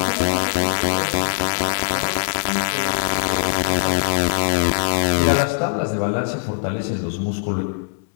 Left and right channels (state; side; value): silent; right; digital silence